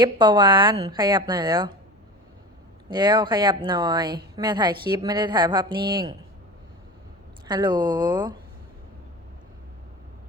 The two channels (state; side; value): normal; both; correlation 0.32